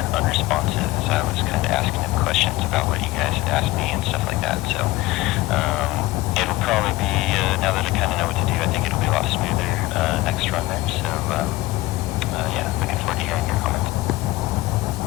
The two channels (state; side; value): quieter; right; 18.8 dB